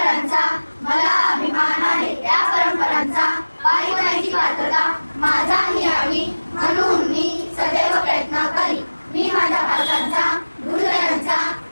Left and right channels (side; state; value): both; inverted; correlation -1.00